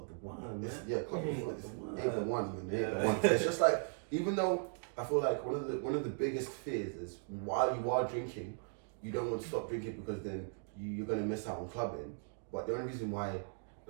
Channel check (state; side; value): silent; left; 53 dB below the other